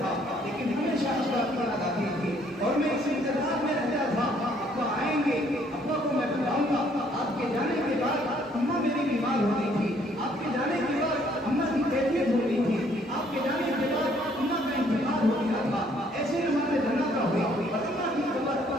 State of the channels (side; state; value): both; normal; correlation 0.64